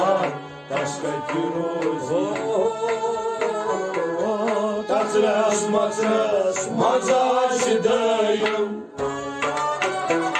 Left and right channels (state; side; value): identical; both; correlation 1.00